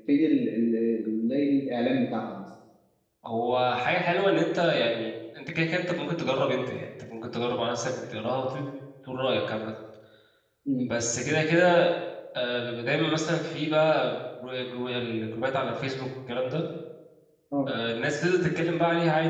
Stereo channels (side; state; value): both; identical; correlation 1.00